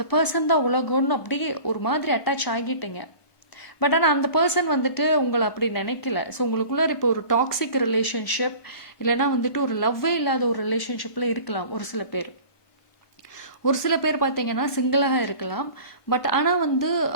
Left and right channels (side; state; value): right; late; 1.2 ms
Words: பர்சன் தான் உலகம்னு அப்படியே ஒரு மாதிரி அட்டாச் ஆகிட்டீங்க. பட் ஆனால் அந்த பர்சன் வந்துட்டு உங்களை அப்படி நினைக்கல. ஸோ உங்களுக்குள்ள இப்போ ஒரு டாக்ஸிக் ரிலேஷன்ஷிப், இல்லைன்னா வந்துட்டு ஒரு லவ்வே இல்லாத ஒரு ரிலேஷன்ஷிப்பில் இருக்கலாம் ஒரு சில பேர். ஒரு சில பேர் பார்த்தீங்கன்னா சிங்கிளாக இருக்கலாம். பட் ஆனால் வந்து